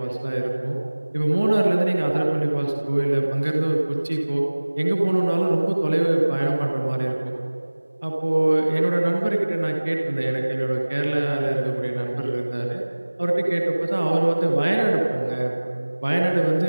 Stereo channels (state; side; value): inverted; both; correlation -1.00